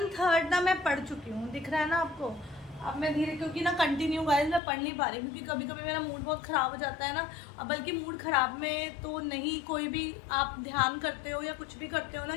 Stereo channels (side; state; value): right; drops out; at 4.6 s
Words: ना मैं पढ़ चुकी हूँ, दिख रहा है ना आपको। अब मैं धीरे, क्योंकि ना कंटिन्यू गाइस मैं पढ़ नहीं पा रही, क्योंकि कभी कभी मेरा मूड बहुत ख़राब हो जाता है ना। अब बल्कि मूड ख़राब में तो नहीं, कोई भी आप ध्यान करते हो या कुछ भी करते हो ना,